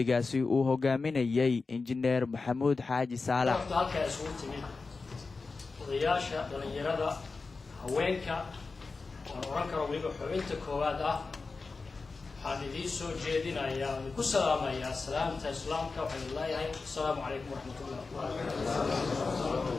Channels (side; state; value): right; quieter; 4.1 dB